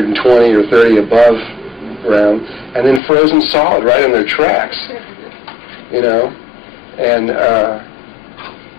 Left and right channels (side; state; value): right; drops out; at 3.0 s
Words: or 30 above ground, and then frozen solid right in their tracks, you know. And